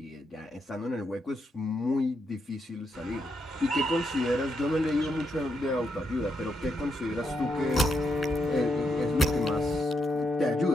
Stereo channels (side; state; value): both; normal; correlation 0.80